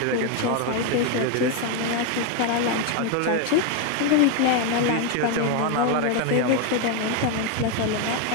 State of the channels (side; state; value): both; different; correlation 0.01